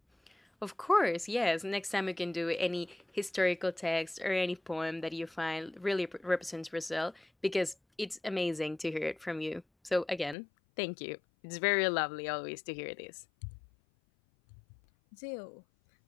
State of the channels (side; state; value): right; drops out; at 10.4 s